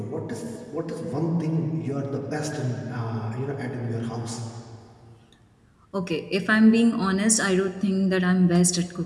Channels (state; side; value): identical; both; correlation 1.00